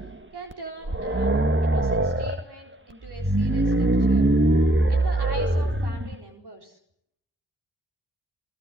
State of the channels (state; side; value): normal; both; correlation 0.67